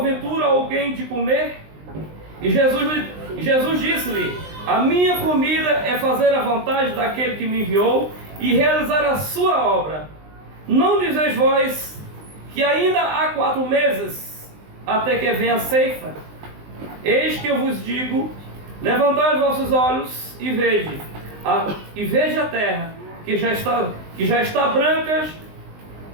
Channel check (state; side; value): late; left; 19 ms